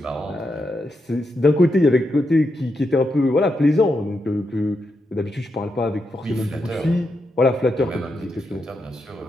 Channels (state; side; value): normal; both; correlation 0.84